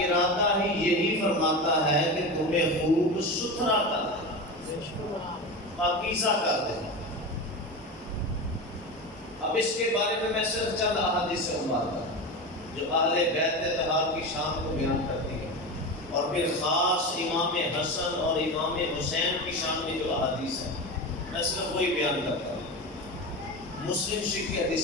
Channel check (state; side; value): normal; both; correlation 0.24